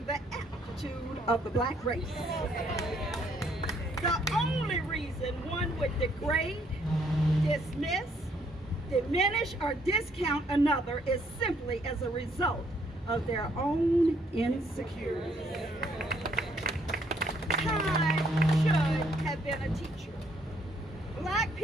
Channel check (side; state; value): both; normal; correlation 0.68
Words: the aptitude of the Black race. The only reason one would degrade, dismiss, diminish, or discount another is simply as a result of their own insecurities. Time should have been a teacher. Black